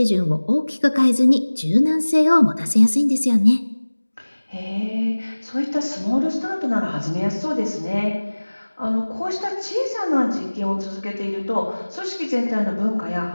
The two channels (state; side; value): inverted; both; correlation -1.00